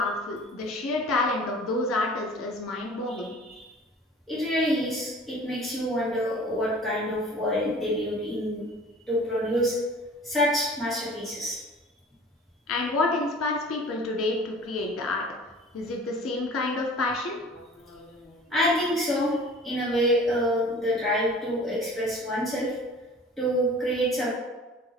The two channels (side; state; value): both; normal; correlation 0.45